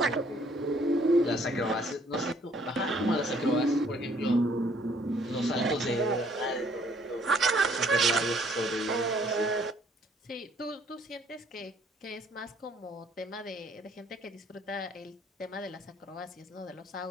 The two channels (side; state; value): both; normal; correlation 0.63